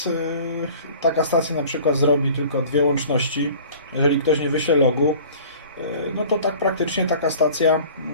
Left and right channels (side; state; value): both; inverted; correlation -0.46